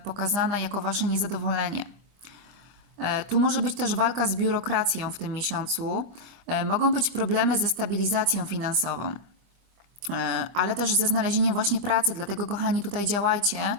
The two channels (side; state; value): left; late; 25 ms